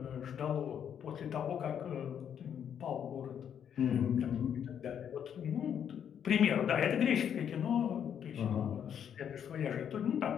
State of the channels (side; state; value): right; quieter; 8.6 dB